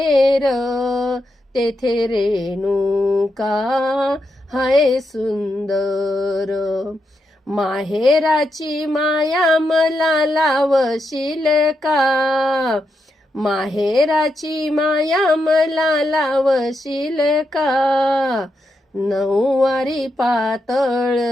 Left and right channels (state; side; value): normal; both; correlation 0.84